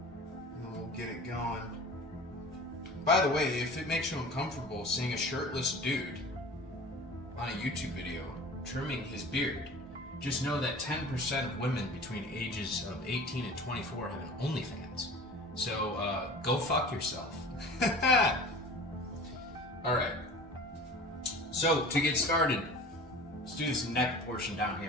and we'll get it going. By the way, if it makes you uncomfortable seeing a shirtless dude on a YouTube video trimming his beard, just know that 10% of women between ages of 18 and 24 have an OnlyFans. So go fuck yourself. Alright. So to get started, let's do this neck portion down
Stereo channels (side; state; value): both; normal; correlation 0.40